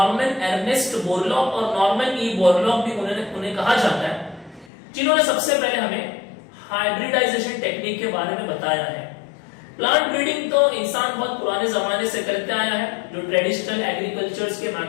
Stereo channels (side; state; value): right; drops out; at 4.7 s